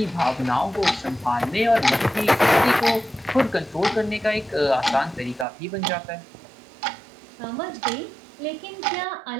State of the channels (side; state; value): left; drops out; at 5.5 s